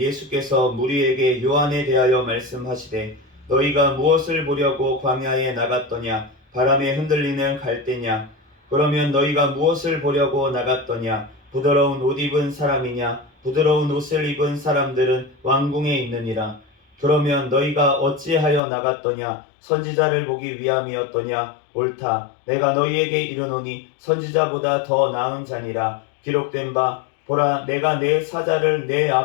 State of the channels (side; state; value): right; drops out; at 18.6 s